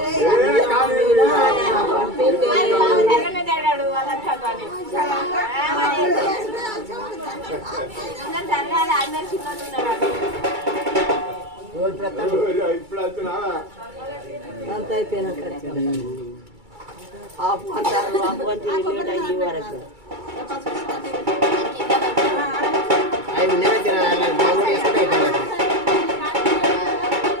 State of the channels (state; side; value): late; left; 2.3 ms